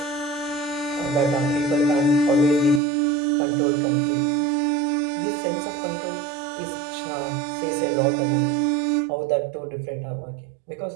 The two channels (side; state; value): left; drops out; at 2.8 s